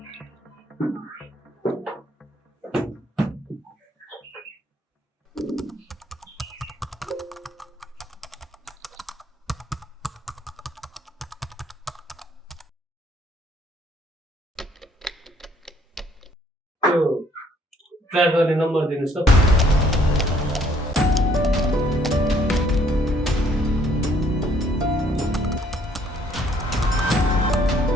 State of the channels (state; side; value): normal; both; correlation 0.63